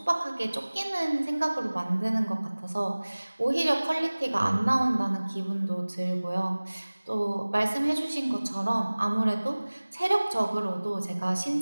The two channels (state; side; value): inverted; both; correlation -1.00